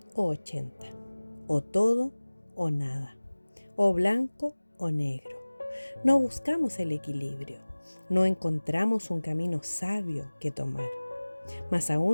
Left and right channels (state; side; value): inverted; both; correlation -1.00